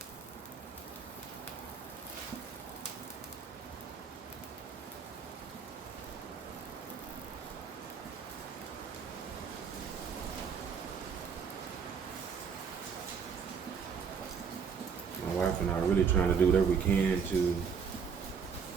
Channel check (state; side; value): quieter; left; 6.4 dB